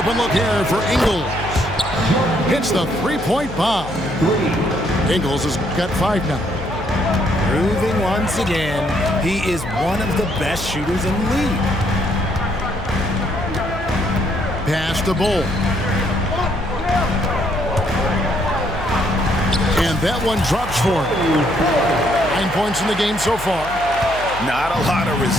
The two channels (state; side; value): noise; left; hum, 13 dB below the sound